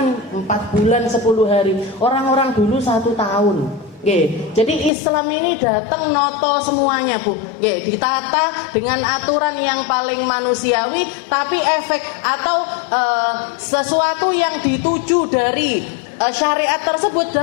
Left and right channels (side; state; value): right; drops out; at 4.9 s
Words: 4 bulan 10 hari, orang-orang dulu 1 tahun. Jadi Islam ini datang noto semuanya Bu. Ditata dengan aturan yang paling manusiawi, tapi efek atau sesuatu yang dituju dari syariat tersebut